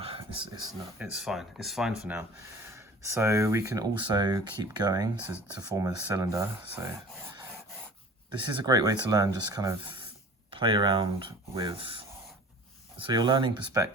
it's fine. It's fine for now. So we can also keep going to form a cylinder. So this is a great way to learn, just kind of play around with. So you're learning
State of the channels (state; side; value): normal; both; correlation 0.43